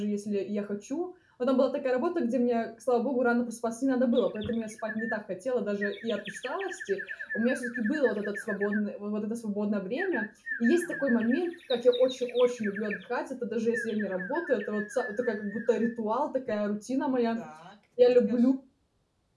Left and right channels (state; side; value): identical; both; correlation 1.00